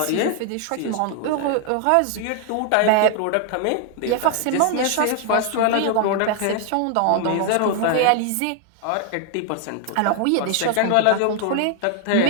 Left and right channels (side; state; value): both; different; correlation 0.00